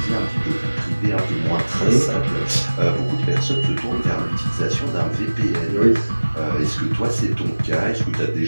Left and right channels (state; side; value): inverted; both; correlation -1.00